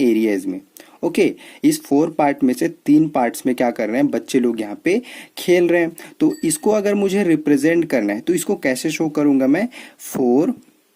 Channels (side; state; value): both; identical; correlation 1.00